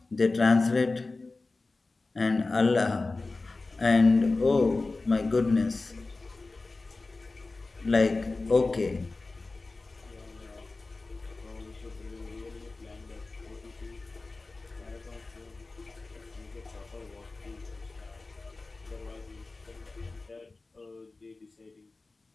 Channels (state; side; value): quieter; right; 3.5 dB